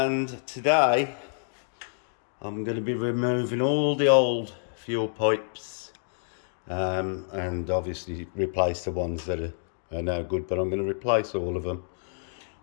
today I'm going to be removing all the old fuel pipes and obviously replace the ones that are no good, but I'm going to replace all of them.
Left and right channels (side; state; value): right; silent; digital silence